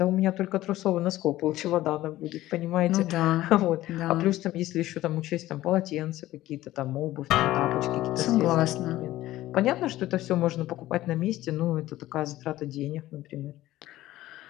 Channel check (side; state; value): right; quieter; 15.6 dB